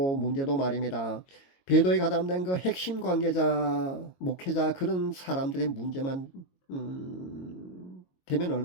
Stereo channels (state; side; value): late; right; 22 ms